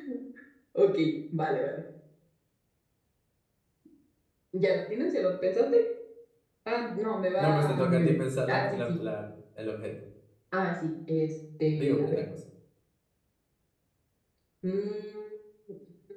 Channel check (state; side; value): identical; both; correlation 1.00